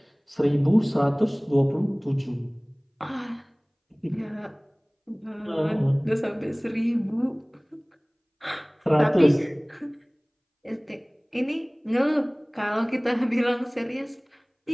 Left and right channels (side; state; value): both; identical; correlation 1.00